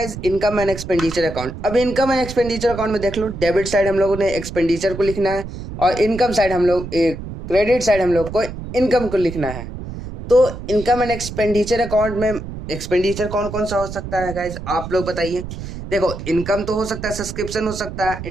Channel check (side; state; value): right; noise; rumble, 9 dB below the sound